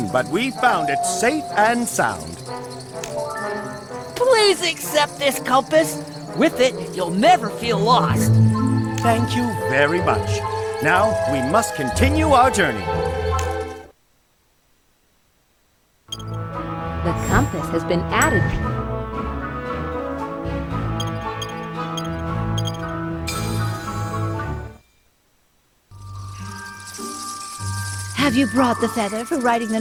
but we found it safe and sound. Please accept this compass. With it, you'll never feel lost. Thank you very much. Now, we must continue our journey. The compass has been added. Have you brought the feather for writing the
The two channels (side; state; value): both; identical; correlation 1.00